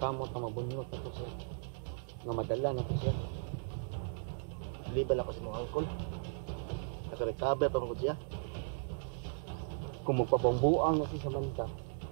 kamot na mabunyot na to siya. Nga madala na to siya. Liban ako sa mga angkol. Nakarecover pa mo siya. Kung magpabambuang na si Samantha,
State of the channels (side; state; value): left; silent; digital silence